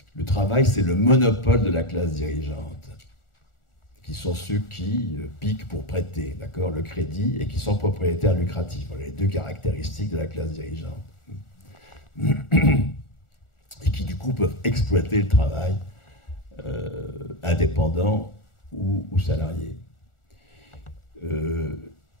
Le travail, c'est le monopole de la classe dirigeante, qui sont ceux qui piquent pour prêter, d'accord, le crédit, et qui sont propriétaires lucratifs. Voilà les deux caractéristiques de la classe dirigeante. Et qui, du coup, peuvent exploiter le travail indépendant ou salarié.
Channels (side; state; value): right; late; 1.4 ms